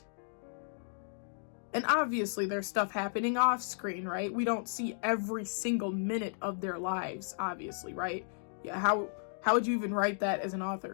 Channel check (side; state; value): right; silent; digital silence